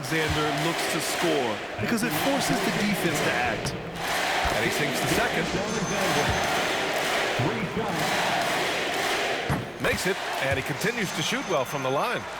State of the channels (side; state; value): both; identical; correlation 1.00